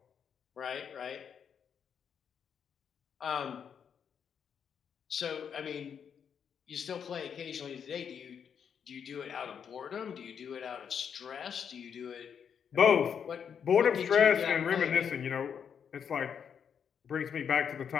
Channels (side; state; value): right; quieter; 7.5 dB